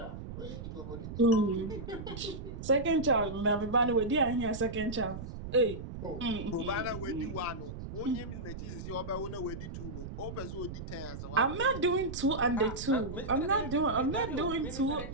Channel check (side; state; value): right; noise; rumble, 9 dB below the sound